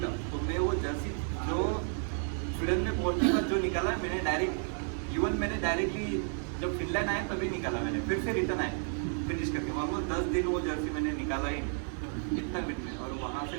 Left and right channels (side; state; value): left; silent; 55 dB below the other